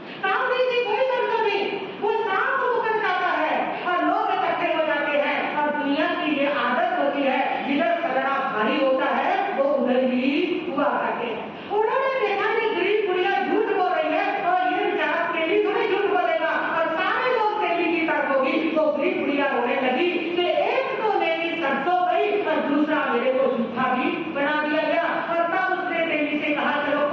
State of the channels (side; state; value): both; identical; correlation 1.00